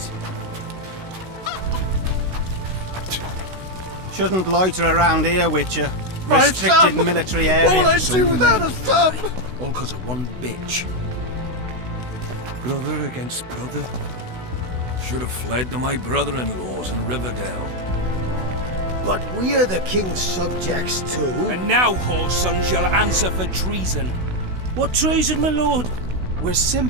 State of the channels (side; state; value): left; late; 16 ms